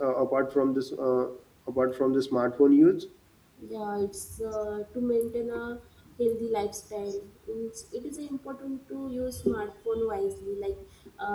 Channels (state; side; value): identical; both; correlation 1.00